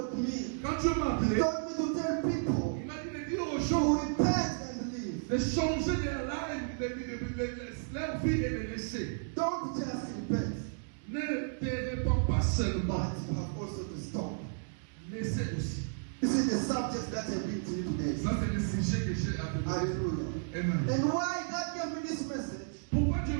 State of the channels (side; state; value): left; silent; digital silence